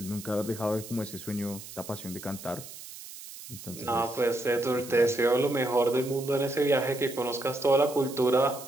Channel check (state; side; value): noise; right; hiss, 14 dB below the sound